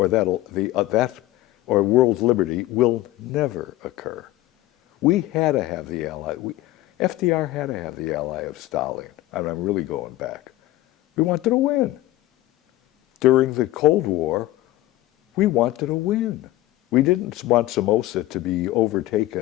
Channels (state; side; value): quieter; right; 16.4 dB